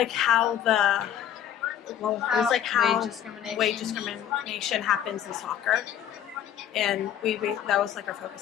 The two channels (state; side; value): quieter; right; 10.2 dB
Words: how wage discrimination happens in soccer, and that was our